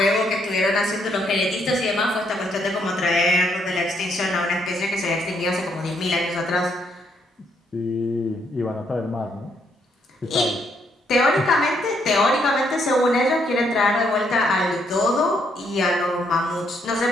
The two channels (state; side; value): normal; both; correlation 0.73